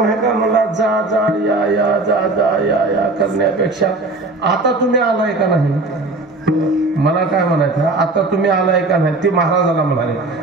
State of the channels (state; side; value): quieter; left; 3.2 dB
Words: आहे का? मला जा जा या या जा जा या या करण्यापेक्षा आता तुम्ही आलाय का नाही? मला काय म्हणायचं, आता तुम्ही आलाय का नाही? ते महाराजाला म्हणाले,